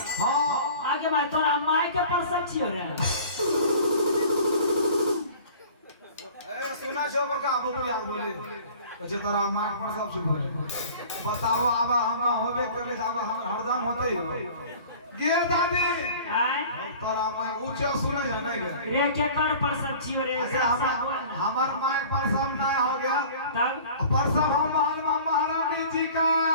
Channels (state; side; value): inverted; both; correlation -0.45